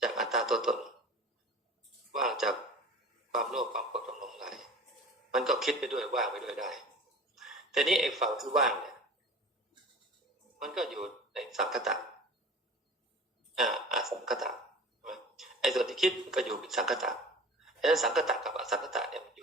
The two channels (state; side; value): normal; both; correlation 0.40